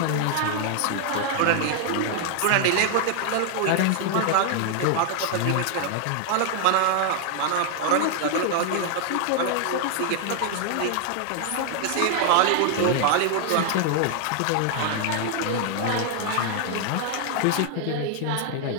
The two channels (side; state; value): both; different; correlation 0.00